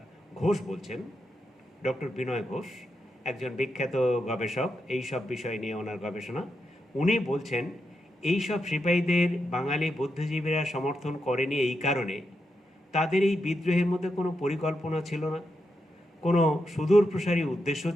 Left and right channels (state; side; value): normal; both; correlation 0.85